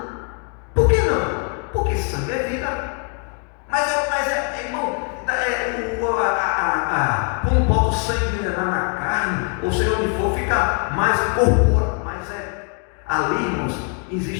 Por que não? Porque sangue é vida. Mas irmão, quando bota o sangue na carne, ou seja, onde for, fica mais corpóreo. Mas ali, irmãos,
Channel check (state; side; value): quieter; right; 39.6 dB